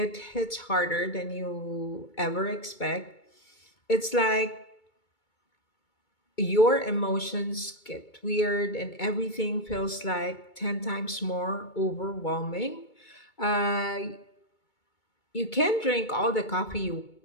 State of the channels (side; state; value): right; late; 2.2 ms